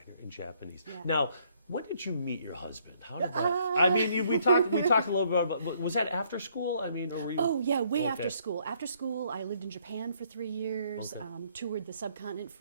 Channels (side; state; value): both; inverted; correlation -0.67